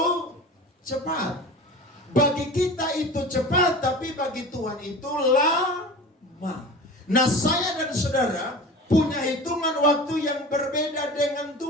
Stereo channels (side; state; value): both; normal; correlation 0.35